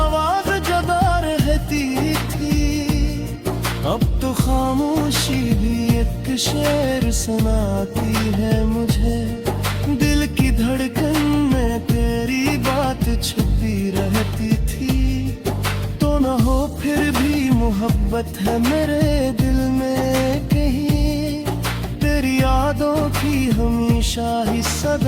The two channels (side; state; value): both; identical; correlation 1.00